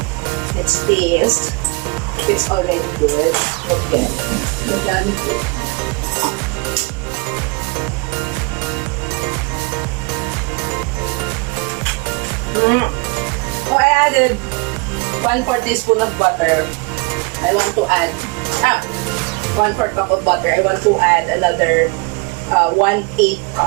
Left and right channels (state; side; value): quieter; left; 29.6 dB